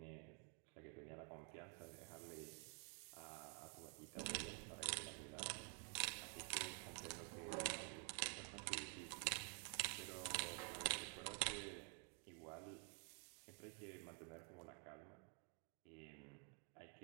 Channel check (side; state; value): left; quieter; 37.9 dB